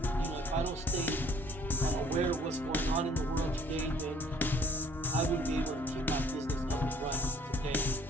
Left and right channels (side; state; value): both; normal; correlation 0.57